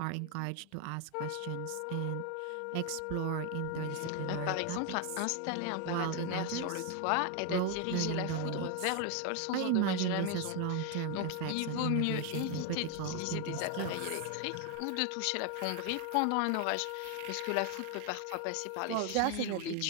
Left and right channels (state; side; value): different; both; correlation 0.01